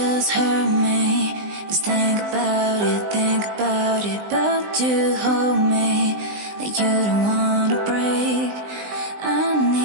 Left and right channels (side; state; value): left; late; 20 ms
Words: hurt me. Just think about it, but you hold me like you don't wanna break. I